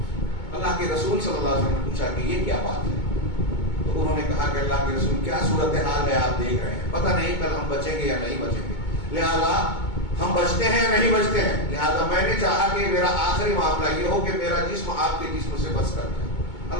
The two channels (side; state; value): right; late; 2.2 ms